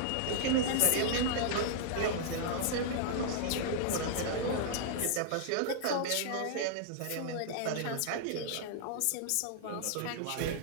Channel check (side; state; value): both; different; correlation -0.01